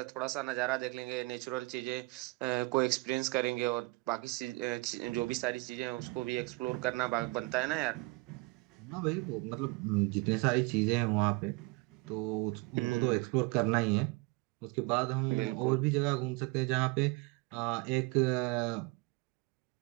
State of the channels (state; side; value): quieter; left; 24.4 dB